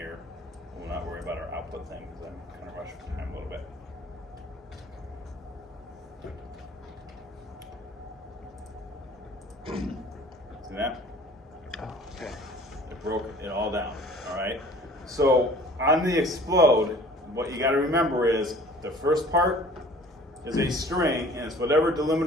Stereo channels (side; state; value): both; normal; correlation 0.49